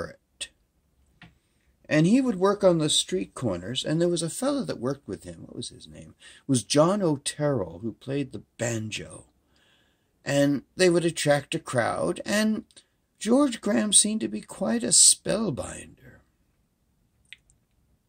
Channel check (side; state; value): both; identical; correlation 1.00